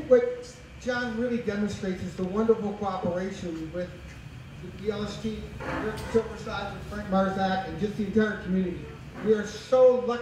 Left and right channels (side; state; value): both; identical; correlation 1.00